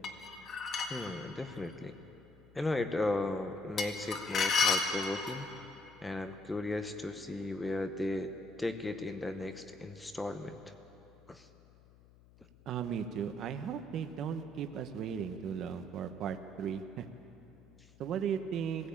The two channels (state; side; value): noise; left; hum, 24 dB below the sound